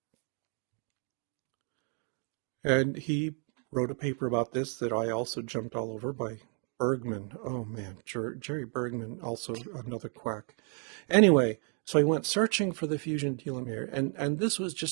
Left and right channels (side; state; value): left; quieter; 39.1 dB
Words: And he wrote a paper about this that I also jumped all over, by Bergman. Oh man, Jerry Bergman, also another quack. Anyway, so I went searching for the fusion telomere, and this was